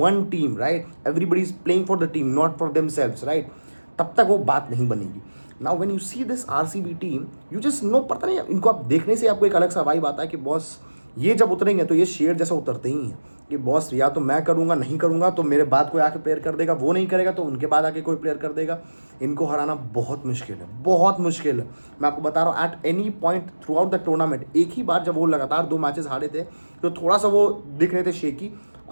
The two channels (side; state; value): both; inverted; correlation -1.00